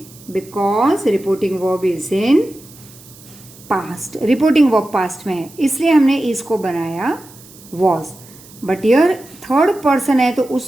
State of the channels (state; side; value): noise; right; hiss, 22 dB below the sound